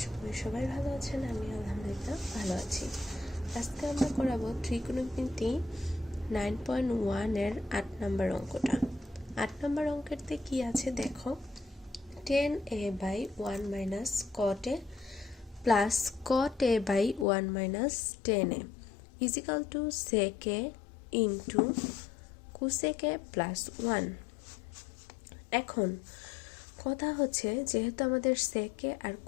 করি সবাই ভালো আছেন। আমি আলহামদুলিল্লাহ ভালো আছি। আজকে আমরা করাবো ত্রিকোণমিতি 9.1 এর 8 নম্বর অঙ্কটা। 8 নম্বর অঙ্কেরতে কি আছে দেখো, tan a by 1 minus cot a plus cot a by 1 minus tan a is equal to sec a into cosec a plus 1। এখন কথা হচ্ছে, যেহেতু আমাদের সেকে আর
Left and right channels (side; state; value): right; drops out; at 17.2 s